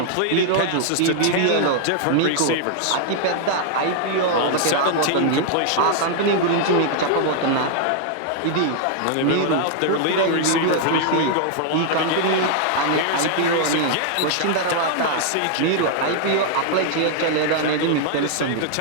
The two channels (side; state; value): both; different; correlation -0.01